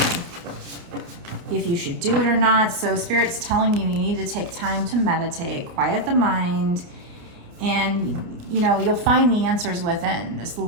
if you should do it or not. So Spirit's telling you need to take time to meditate, quiet the mind, and, you know, you'll find the answers within. This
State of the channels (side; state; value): left; late; 29 ms